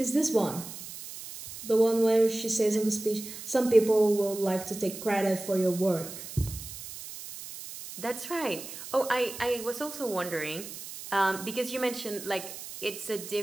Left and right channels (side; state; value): right; noise; hiss, 11 dB below the sound